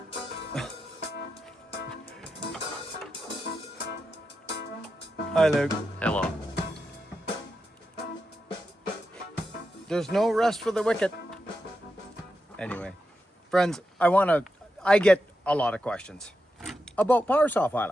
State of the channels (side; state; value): both; normal; correlation 0.88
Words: Hi, Luke. Hello. There's no rest for the wicked. Anyway, friends, I get a lot of questions about power saw